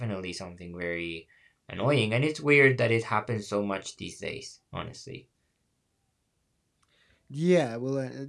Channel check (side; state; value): both; identical; correlation 1.00